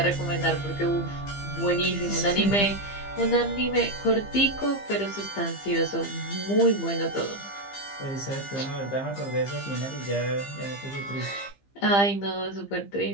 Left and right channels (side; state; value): right; late; 15 ms